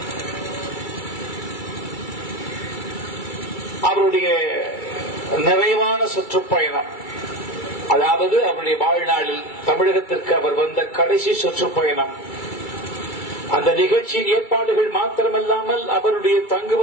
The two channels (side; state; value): right; late; 2.3 ms